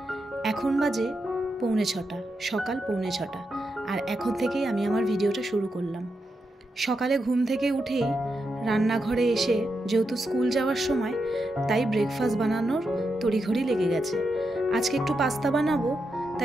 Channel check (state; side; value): normal; both; correlation 0.85